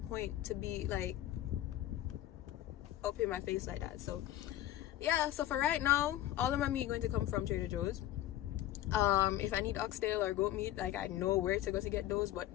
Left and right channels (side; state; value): right; quieter; 13.6 dB